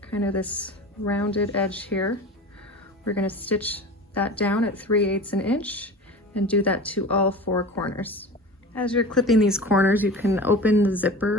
kind of this rounded edge here. We're going to stitch that down at 3/8 an inch and do that to all 4 corners. As you're clipping these corners, you can open the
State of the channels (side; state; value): both; normal; correlation 0.35